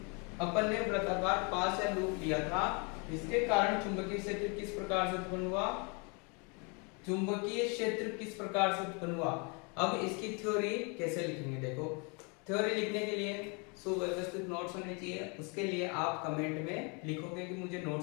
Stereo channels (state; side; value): quieter; right; 33.1 dB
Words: अपन ने वृत्ताकार पास या लूप लिया था, इसके कारण चुंबकीय क्षेत्र किस प्रकार से उत्पन्न हुआ। अब इसकी थ्योरी कैसे लिखेंगे, देखो थ्योरी लिखने के लिए सुव्यवस्थित नोट्स होने चाहिए। उसके लिए आप कमेंट में लिखोगे कि मुझे